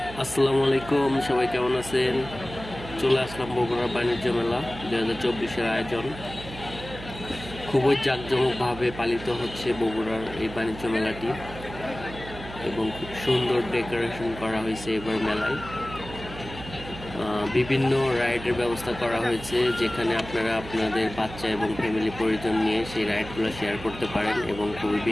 আসসালামু আলাইকুম, সবাই কেমন আছেন? চলে আসলাম বগুড়া বাণিজ্য মেলা 2024-এর আয়োজন। খুবই জাঁকজমকভাবে পালিত হচ্ছে বগুড়ার এই বাণিজ্য মেলাটি এবং খুব সুন্দর ডেকোরেশন করা হয়েছে এবার মেলায়। বিভিন্ন রাইডের ব্যবস্থা করা হয়েছে, যেখানে আপনারা আপনাদের বাচ্চা এবং ফ্যামিলি পরিজন নিয়ে সেই রাইডগুলো শেয়ার করতে পারেন এবং খুবই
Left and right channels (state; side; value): noise; right; hum, 13 dB below the sound